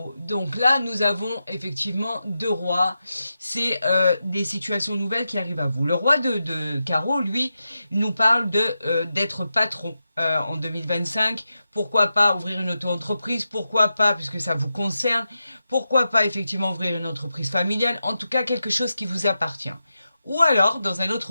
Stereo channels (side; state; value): both; inverted; correlation -0.90